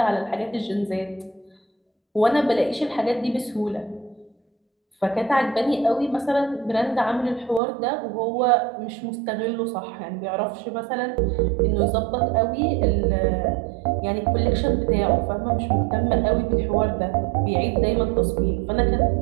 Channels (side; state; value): left; drops out; at 7.6 s